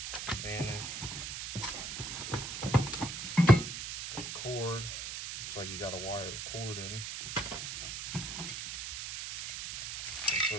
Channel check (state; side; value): noise; right; hiss, 5 dB below the sound